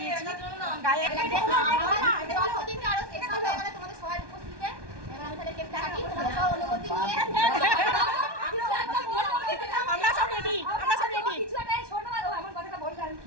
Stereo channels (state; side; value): late; left; 1.2 ms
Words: দিয়েছি গায়ে। আমরা সব রেডি, আমরা সব রেডি।